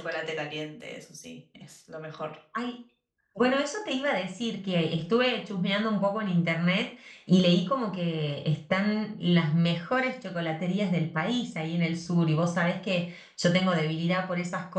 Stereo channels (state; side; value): identical; both; correlation 1.00